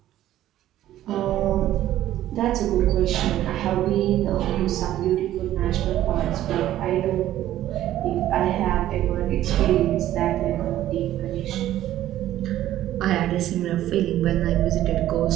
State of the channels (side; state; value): left; quieter; 13.2 dB